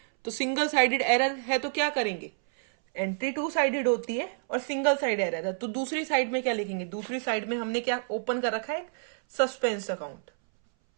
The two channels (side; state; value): left; silent; 59 dB below the other